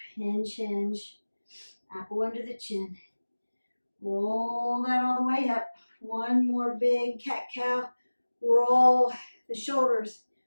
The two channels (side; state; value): both; inverted; correlation -1.00